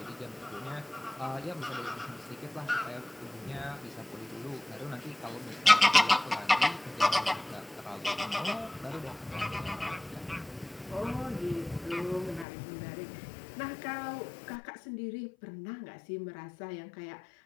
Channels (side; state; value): right; drops out; at 12.5 s